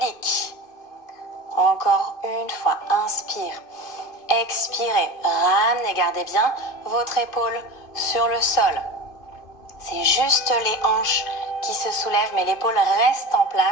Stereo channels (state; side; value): late; right; 2.5 ms